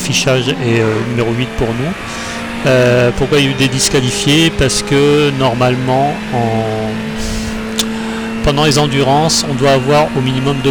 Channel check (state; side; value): identical; both; correlation 1.00